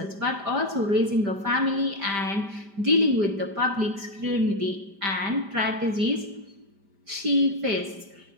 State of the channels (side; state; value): left; late; 5.0 ms